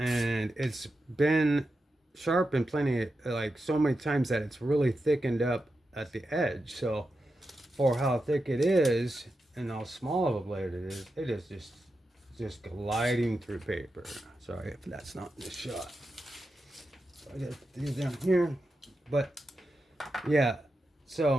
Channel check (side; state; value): both; normal; correlation 0.89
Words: it's been sharpened plenty, like so many times that it's really thickened up at the edge. So for how thick it is and how small of a blade it is just gliding through paper. Sorry if that's not in the shot. So I got these down here. But yeah,